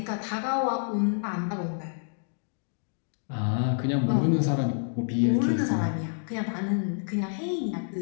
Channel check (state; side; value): silent; right; digital silence